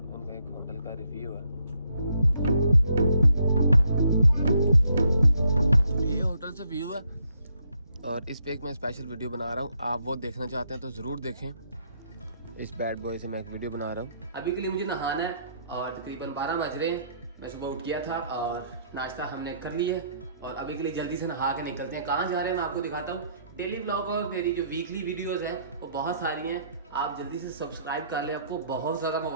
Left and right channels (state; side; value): inverted; both; correlation -0.70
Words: उनका एक होटल का रिव्यू है। ये होटल से व्यू है और इस पे एक मैं स्पेशल वीडियो बना रहा हूँ। आप वो देखना चाहते हैं तो ज़रूर देखें। इस बैड बॉय से मैं एक वीडियो बना रहा हूँ। अभी के लिए मुझे नहाना है और तकरीबन 12 बज रहे हैं। मैं सुबह उठ गया था और नाश्ता हमने कर लिया है और अभी के लिए जल्दी से नहा के निकलते हैं। कहाँ जा रहे हैं मैं आपको दिखाता हूँ। डेली व्लॉग और मेरी जो वीकली वीडियोस हैं वो बहुत सारी हैं। आप जल्दी से सब्सक्राइब कर लें, आपको बहुत सारा